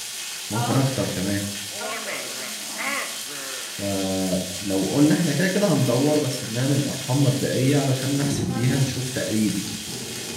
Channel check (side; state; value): both; identical; correlation 1.00